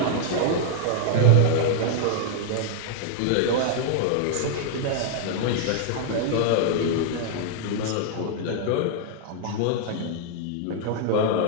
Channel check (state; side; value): different; both; correlation -0.01